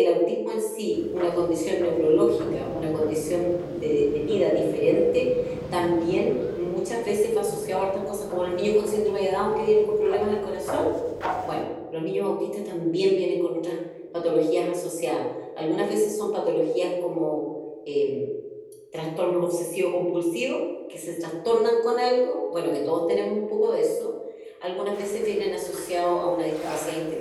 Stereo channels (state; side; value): identical; both; correlation 1.00